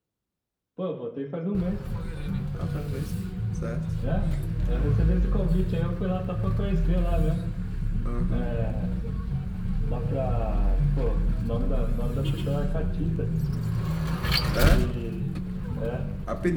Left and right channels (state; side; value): identical; both; correlation 1.00